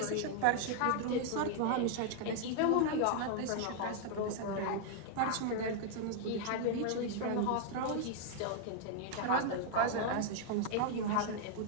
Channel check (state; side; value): different; both; correlation 0.00